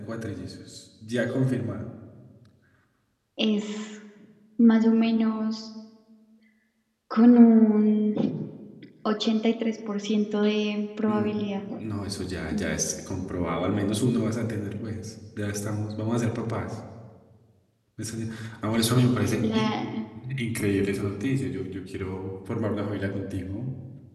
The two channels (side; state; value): both; identical; correlation 1.00